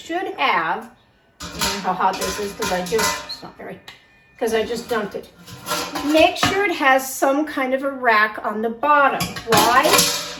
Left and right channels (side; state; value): both; identical; correlation 1.00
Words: have, how hot this is because I just dumped it. Make sure it has some kind of a rack on the bottom. Why?